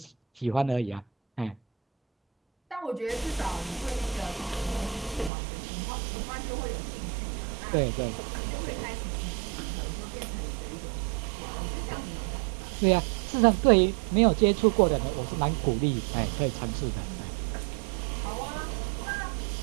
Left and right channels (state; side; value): drops out; left; at 5.3 s